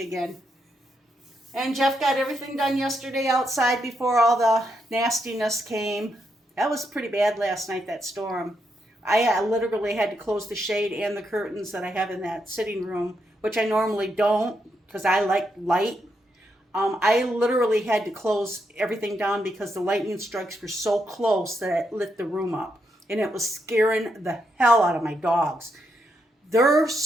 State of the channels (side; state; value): both; normal; correlation 0.81